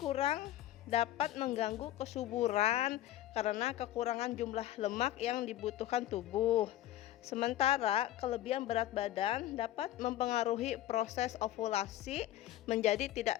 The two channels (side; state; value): right; quieter; 13.7 dB